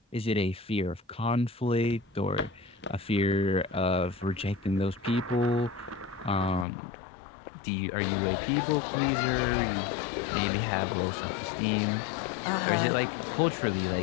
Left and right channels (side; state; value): right; drops out; at 6.7 s